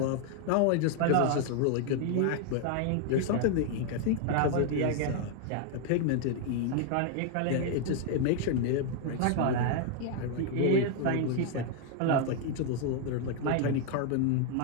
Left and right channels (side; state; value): both; different; correlation 0.00